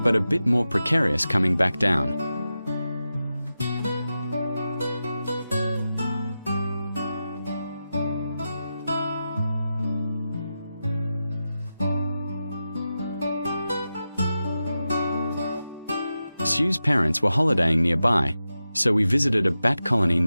But a bit more precarious coming back down. Sue's parents were holidaying nearby, so we visited a bat colony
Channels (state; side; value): inverted; both; correlation -0.92